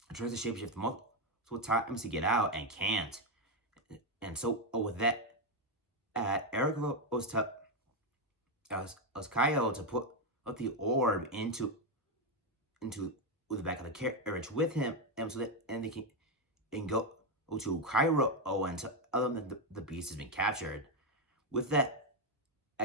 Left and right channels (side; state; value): both; normal; correlation 0.06